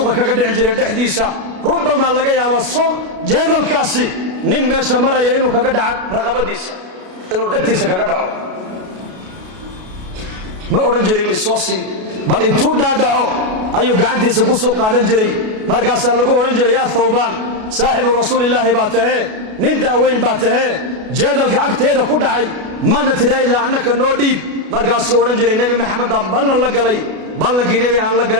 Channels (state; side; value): late; left; 33 ms